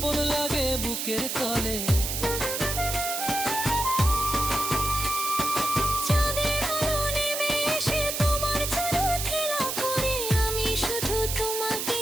লাগে বুকের তলে।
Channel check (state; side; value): noise; right; hiss, 3 dB below the sound